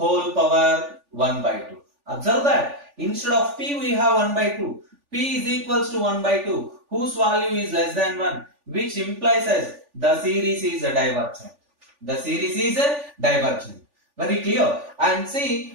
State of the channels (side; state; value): left; late; 3.4 ms